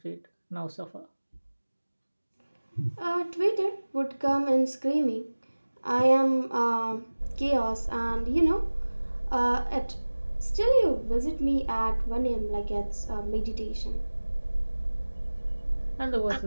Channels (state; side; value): inverted; both; correlation -1.00